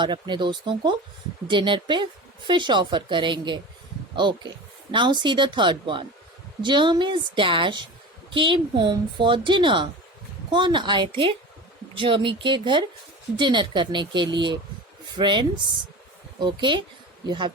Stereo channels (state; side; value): normal; both; correlation 0.32